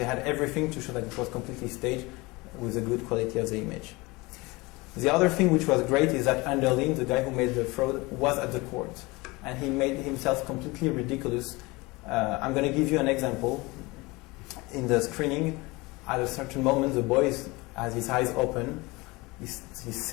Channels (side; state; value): right; quieter; 23.6 dB